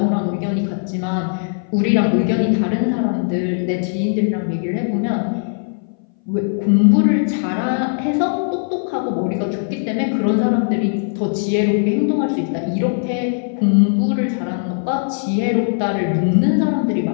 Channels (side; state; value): right; silent; 61 dB below the other